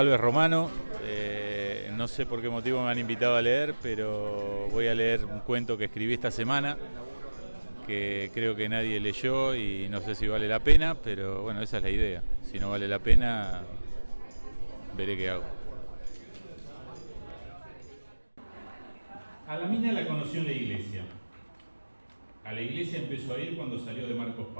Romano, no sé por qué motivo me han invitado a leer, pero voy a leer un cuento que escribí esta semana, que creo que nadie leyó y no sé si vale la pena, pero bueno, esa es la idea. Si no vale la pena, veré qué hago. A la mina la conoció en la iglesia. A la iglesia empezó a ir cuando salió de Marcos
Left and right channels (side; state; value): both; inverted; correlation -1.00